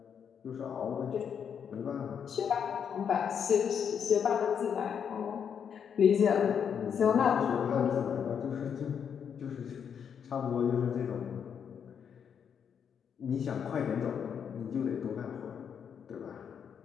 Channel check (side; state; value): right; quieter; 7.6 dB